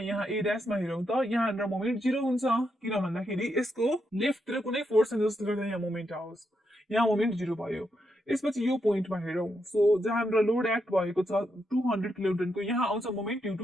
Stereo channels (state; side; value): normal; both; correlation 0.82